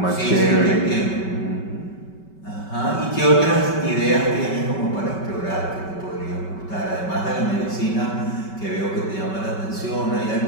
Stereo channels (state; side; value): late; right; 5.3 ms